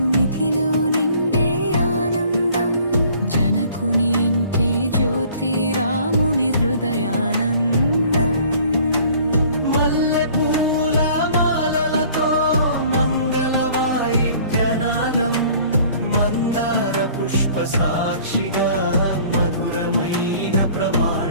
మిథిలో నిండే ఆనందం. జనకుని ఇంటి జ్యోతి, రాముని హృదయానందం. మల్లెపూల మాలలతో మంగళ వాయిద్యనాదం, మందార పుష్ప సాక్షిగా మధురమైన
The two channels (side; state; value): both; inverted; correlation -0.53